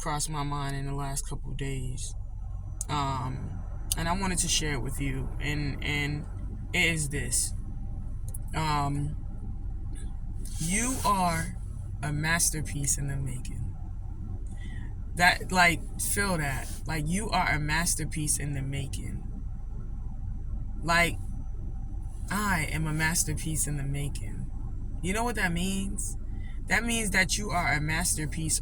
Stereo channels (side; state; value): both; identical; correlation 1.00